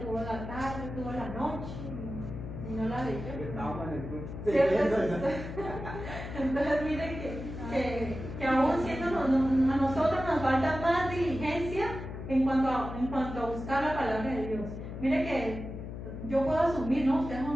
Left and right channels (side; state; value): left; noise; hum, 9 dB below the sound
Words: la tarde, tuvo la noche, y no la leyó. Entonces, miren que aún siendo a nosotros nos falta más diligencia en cuanto a buscar la palabra de Dios. Miren que yo puedo asumir, ¿no? Ustedes